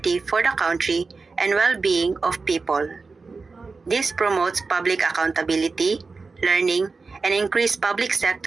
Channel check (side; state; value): left; quieter; 4.2 dB